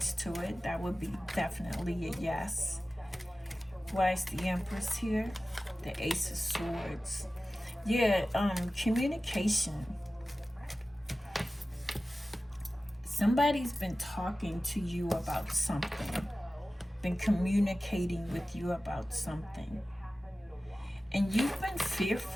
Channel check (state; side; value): normal; both; correlation 0.96